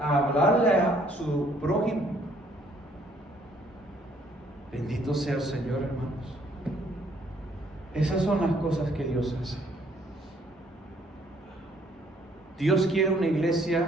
hablarle a su prójimo. Bendito sea el Señor, hermanos. Esas son las cosas que Dios hace. Dios quiere una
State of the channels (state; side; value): normal; both; correlation 0.64